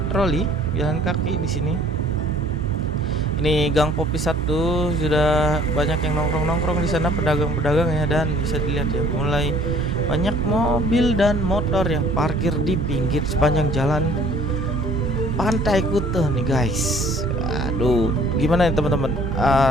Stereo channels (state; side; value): normal; both; correlation 0.56